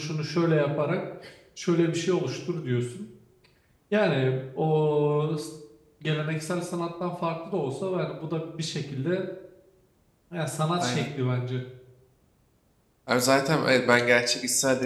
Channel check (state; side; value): identical; both; correlation 1.00